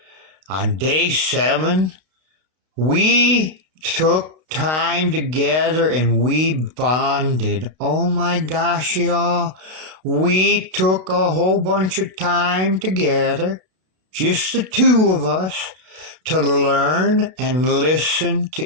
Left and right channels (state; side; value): late; left; 32 ms